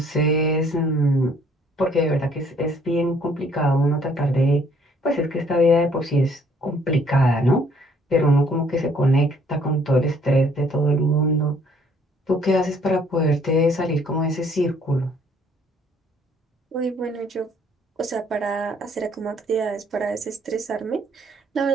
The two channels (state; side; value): normal; both; correlation 0.62